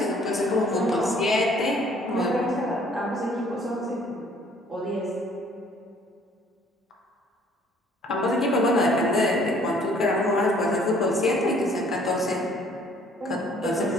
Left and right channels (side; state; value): both; normal; correlation 0.59